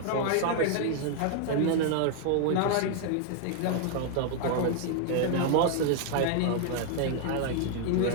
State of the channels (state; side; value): different; both; correlation 0.00